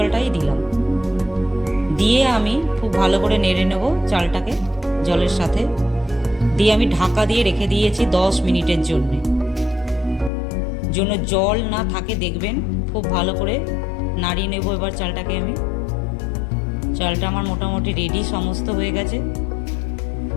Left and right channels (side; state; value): right; drops out; at 10.3 s